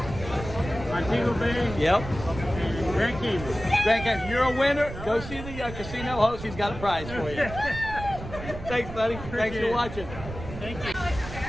Montego Bay. Yep. And Grand Cayman. Grand Cayman. You're a winner. Go see the casino host. He's got a prize for you. Thanks, buddy. Thanks for watching. Thank you.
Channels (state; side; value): noise; right; rumble, 10 dB below the sound